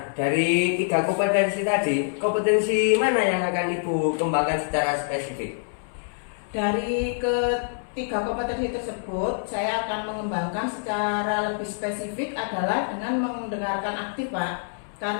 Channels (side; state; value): right; silent; 61 dB below the other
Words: dari 3 kompetensi tadi, kompetensi mana yang akan Ibu kembangkan secara spesifik? Dari ketiga kompetensi tersebut, saya akan mengembangkan secara lebih spesifik adalah dengan mendengarkan aktif, Pak.